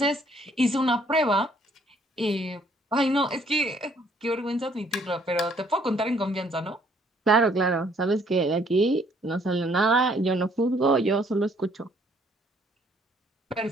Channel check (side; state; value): both; normal; correlation 0.64